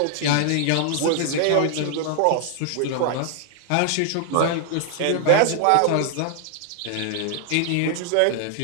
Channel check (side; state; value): both; different; correlation 0.00